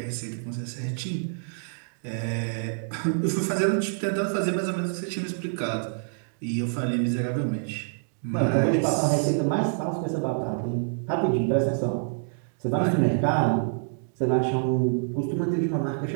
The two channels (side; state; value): left; silent; digital silence